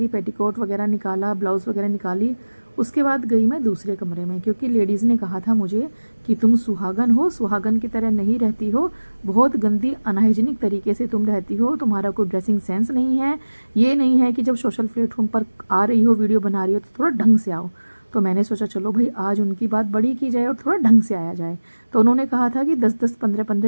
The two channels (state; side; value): inverted; both; correlation -1.00